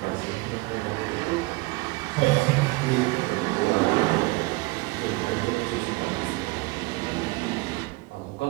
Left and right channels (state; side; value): quieter; left; 24.0 dB